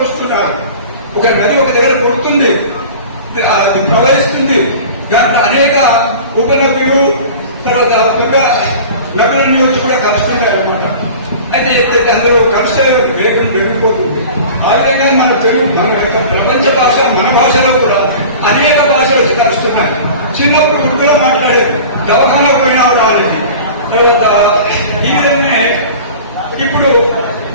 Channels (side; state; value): both; inverted; correlation -0.39